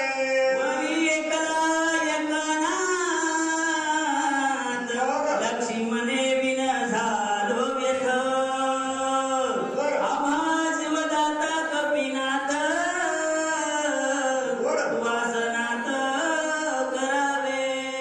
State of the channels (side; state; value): both; identical; correlation 1.00